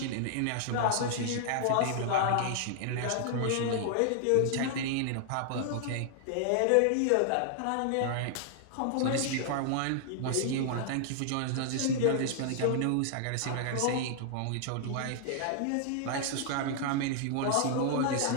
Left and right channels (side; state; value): both; different; correlation -0.01